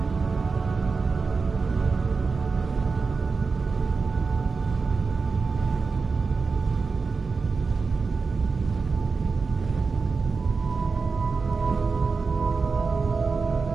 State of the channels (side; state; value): left; quieter; 4.6 dB